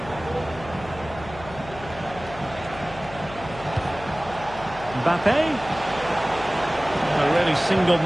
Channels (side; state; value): left; noise; hum, 15 dB below the sound